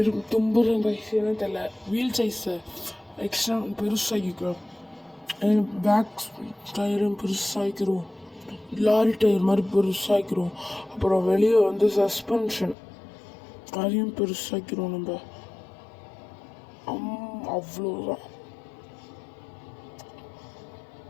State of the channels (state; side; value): drops out; right; at 12.8 s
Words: தும்புறேன் கைஸ். என்ன தெரியல, வீல் சைஸை எக்ஸ்ட்ரா பெருசாகிக்கிறோம். பேக் டயரும் பெருசாகிக்கிறோம். லாரி டயர் மாதிரி பெருசாகிக்கிறோம். அப்புறம் வெளியே வந்து சஸ்பென்ஷன் அதையும் பெருசாக்கிறோம் நம்ம. அவ்வளோதான்.